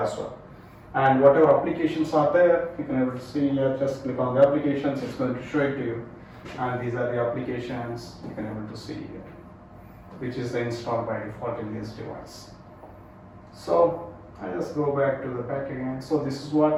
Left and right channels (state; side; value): identical; both; correlation 1.00